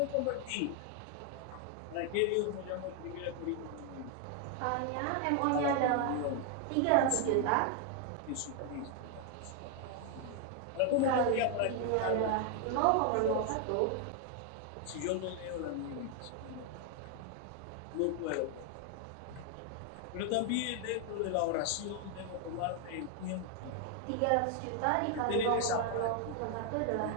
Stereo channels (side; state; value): both; different; correlation 0.00